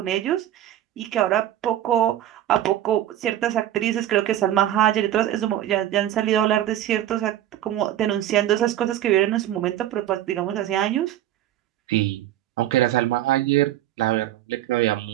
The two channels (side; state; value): left; quieter; 12.5 dB